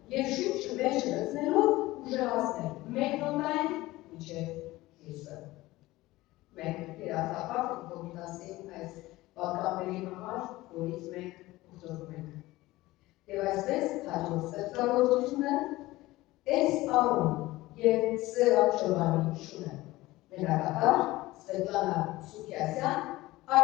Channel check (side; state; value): right; quieter; 18.5 dB